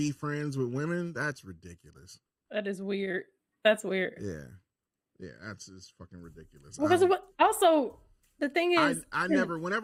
friends with women, that's ridiculous. That is weird. That's weird. Yeah, that's just fucking ridiculous. Because also, the thing is...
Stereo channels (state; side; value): identical; both; correlation 1.00